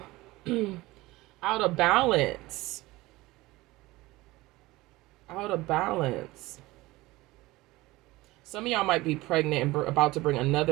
out of balance. Out of balance. Some of y'all might be pregnant and about to bring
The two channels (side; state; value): left; quieter; 19.6 dB